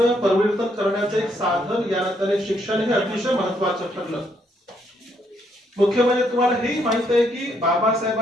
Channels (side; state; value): both; normal; correlation 0.72